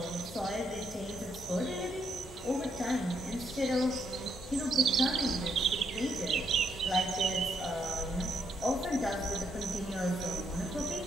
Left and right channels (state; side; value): normal; both; correlation 0.75